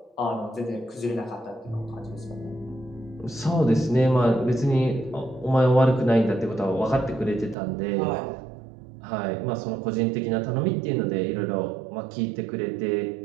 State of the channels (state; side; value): drops out; left; at 7.6 s